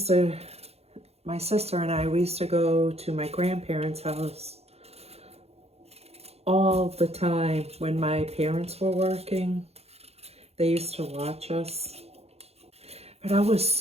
my sister and I, we used to go to my grandparents' house all the time when my parents were working. They used to watch us. But I was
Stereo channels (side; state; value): left; late; 0.30 ms